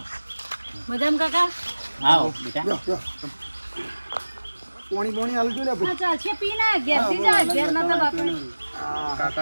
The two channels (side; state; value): both; inverted; correlation -1.00